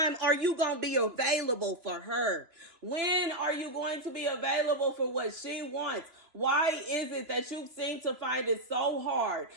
are you going to be available for her? When are you going to be available for what she wants? Why is it that you seem to find it so hard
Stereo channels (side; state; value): left; late; 2.9 ms